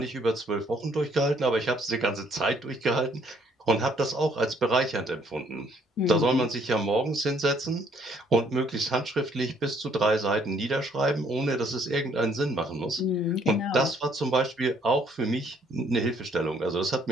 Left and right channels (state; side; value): normal; both; correlation 0.65